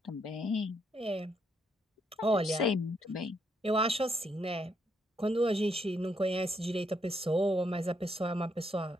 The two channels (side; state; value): both; normal; correlation 0.76